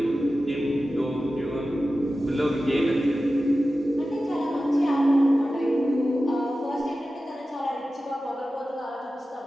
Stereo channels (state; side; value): normal; both; correlation 0.94